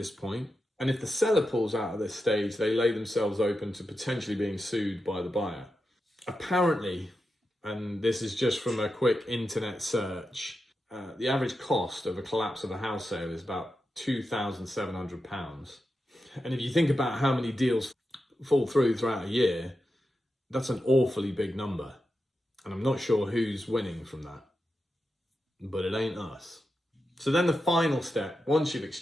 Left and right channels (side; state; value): both; normal; correlation 0.89